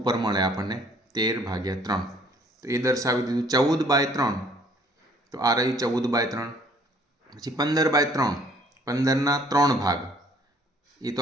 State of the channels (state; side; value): normal; both; correlation 0.59